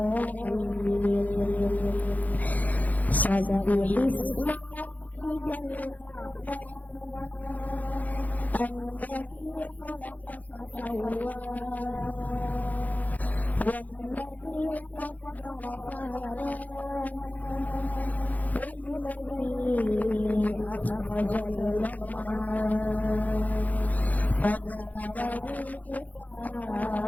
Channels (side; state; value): right; late; 0.079 ms